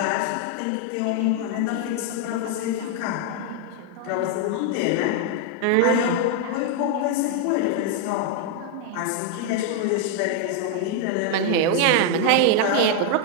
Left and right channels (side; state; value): both; different; correlation 0.00